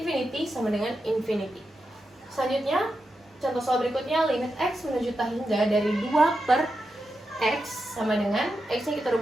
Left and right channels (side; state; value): both; normal; correlation 0.88